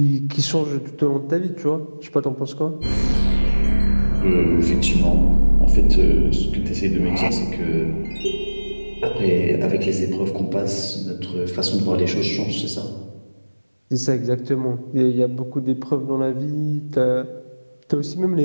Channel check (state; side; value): inverted; both; correlation -1.00